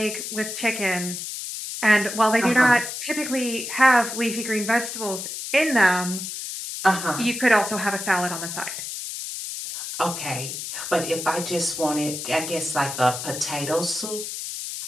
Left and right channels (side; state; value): left; noise; hiss, 7 dB below the sound